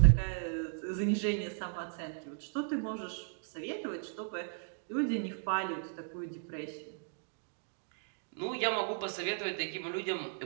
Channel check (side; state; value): left; silent; digital silence